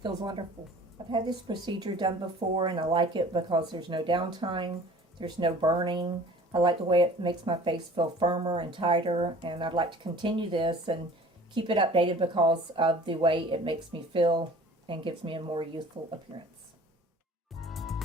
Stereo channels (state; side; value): normal; both; correlation 0.47